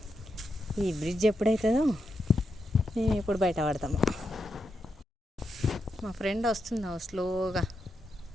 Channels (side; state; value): both; normal; correlation 0.85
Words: ఈ బ్రిడ్జ్ ఎప్పుడవుతుందో మేము ఎప్పుడు బయట పడతాము. మా ఫ్రెండ్ వస్తుందా స్లోగా,